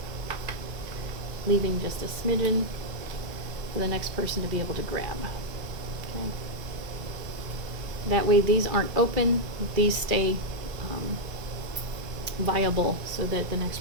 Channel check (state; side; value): late; left; 2.7 ms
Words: leaving just a smidgen for the next person to be able to grab. Okay. That way these aren't open, these stay viable so that the